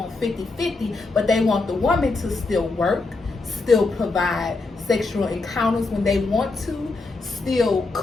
50-50, but they want the woman to still work, still provide sexual encounters when they want to, still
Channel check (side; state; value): right; quieter; 3.6 dB